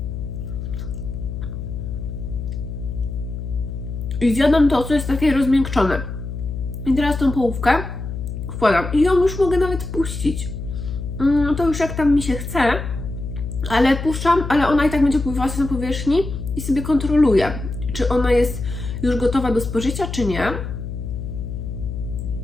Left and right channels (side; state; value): left; noise; hum, 6 dB below the sound